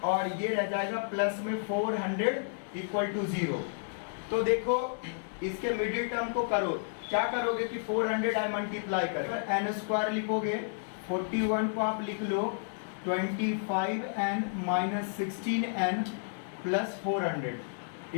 और ये रह जाएगा प्लस में 400 = 0। तो देखो इसके मिडिल टर्म को करो, क्या करोगे कि 400 आई मल्टीप्लाई करें, n² लिखोगे, 41 को आप लिख लो 25n - 16n + 400 =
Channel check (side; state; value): right; silent; digital silence